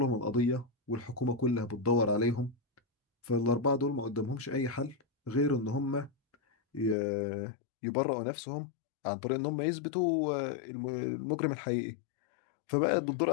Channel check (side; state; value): right; drops out; at 7.0 s